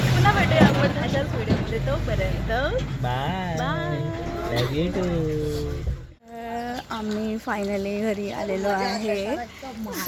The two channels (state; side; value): identical; both; correlation 1.00